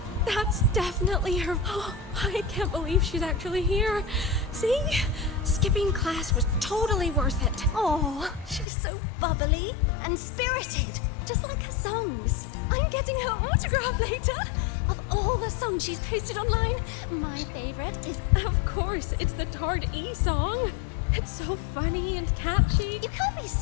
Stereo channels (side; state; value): right; drops out; at 8.7 s